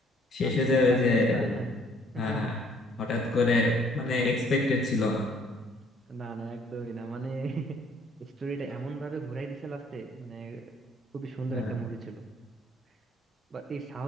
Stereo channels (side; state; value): both; normal; correlation 0.61